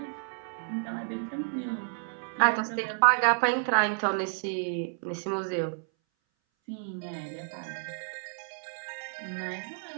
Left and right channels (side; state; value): left; silent; 57 dB below the other